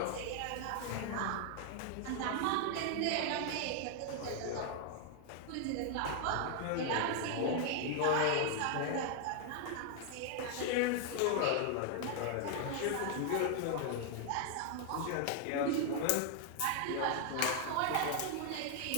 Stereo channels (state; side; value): different; both; correlation 0.00